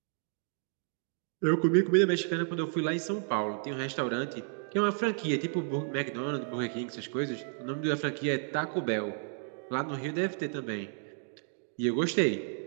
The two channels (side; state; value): left; silent; 55 dB below the other